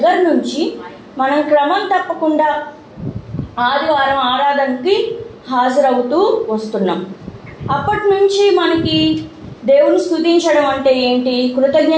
నుంచి మనం క్రమం తప్పకుండా ఆదివారం ఆరాధనకి హాజరవుతూ వస్తున్నాం. అప్పటి నుంచి మనకి దేవుని స్తుతించడం అంటే ఏంటి,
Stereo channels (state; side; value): identical; both; correlation 1.00